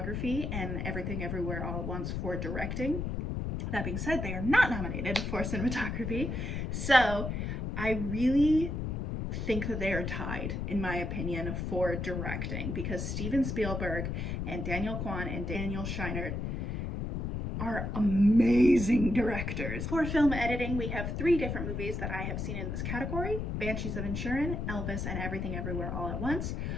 and Everything Everywhere All at Once for directing. That being said, they are not nominated for cinematography, so I really think that they are tied, in my opinion, for directing, because Steven Spielberg and Daniel Kwan and Daniel Scheinert are amazing directors. For film editing, we have three different movies that I have seen in this category: Banshees of Inisherin, Elvis, and Everything Everywhere All at Once.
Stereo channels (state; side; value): noise; left; rumble, 3 dB below the sound